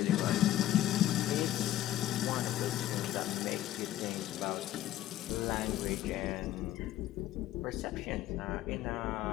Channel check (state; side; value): quieter; right; 13.6 dB